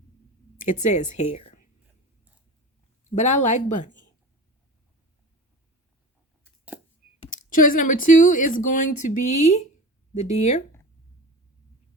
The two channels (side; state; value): both; normal; correlation 0.33